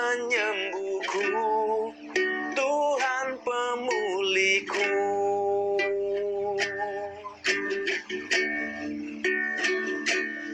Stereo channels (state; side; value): identical; both; correlation 1.00